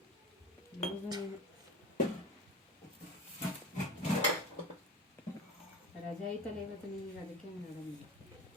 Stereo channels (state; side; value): normal; both; correlation 0.32